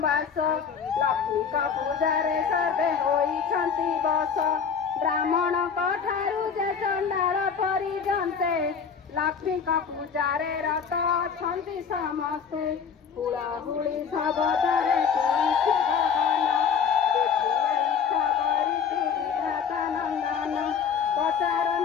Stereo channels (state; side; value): quieter; right; 6.6 dB